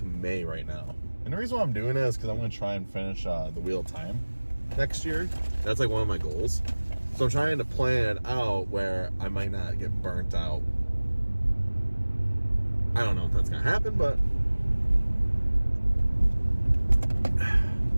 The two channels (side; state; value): both; inverted; correlation -1.00